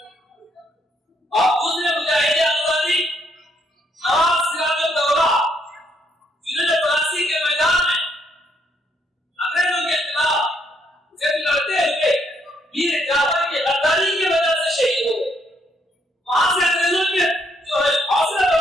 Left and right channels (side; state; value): both; normal; correlation 0.72